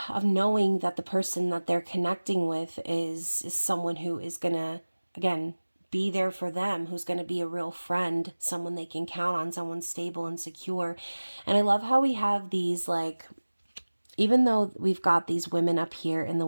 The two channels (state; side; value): inverted; both; correlation -1.00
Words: knowing that the person that they're connecting with is someone who is going to, again, be there for them, who's going to be a real friend, someone they can count on, someone stable and secure. And I love how we have these, like, even though we've got these women up here in the